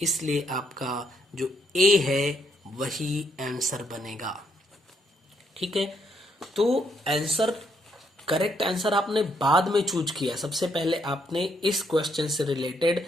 इसलिए आपका जो ए है वही आंसर बनेगा, ठीक है। तो आंसर, करेक्ट आंसर आपने बाद में चूज किया, सबसे पहले आपने इस क्वेश्चन से रिलेटेड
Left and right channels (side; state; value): both; normal; correlation 0.74